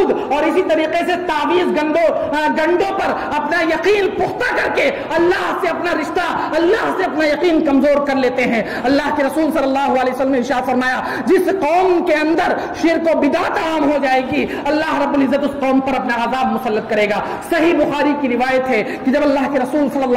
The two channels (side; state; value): both; identical; correlation 1.00